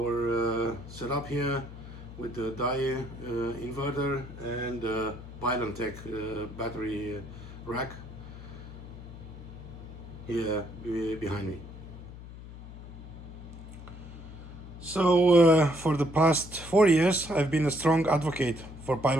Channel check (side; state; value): left; noise; hum, 14 dB below the sound